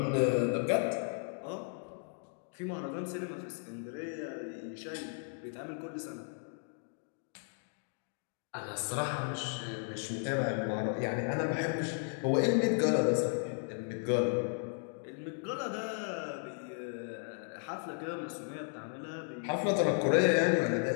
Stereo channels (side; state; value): right; silent; 54 dB below the other